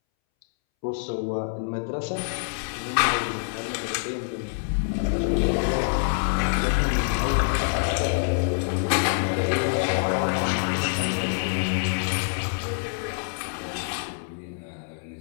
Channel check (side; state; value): right; silent; 61 dB below the other